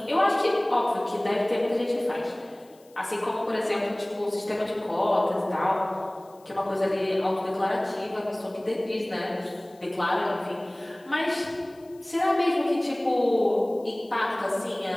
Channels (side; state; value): left; noise; hiss, 30 dB below the sound